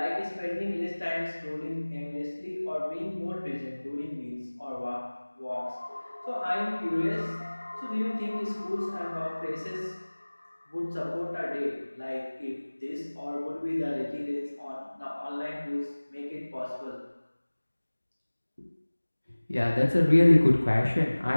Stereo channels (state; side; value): inverted; both; correlation -1.00